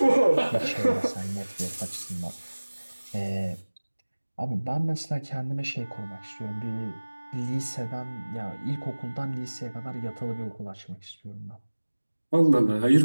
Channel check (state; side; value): inverted; both; correlation -1.00